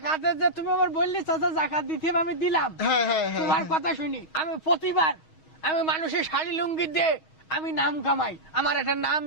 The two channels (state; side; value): late; right; 6.3 ms